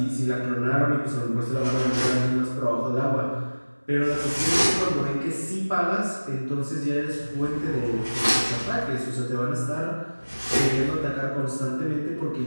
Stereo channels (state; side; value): inverted; both; correlation -1.00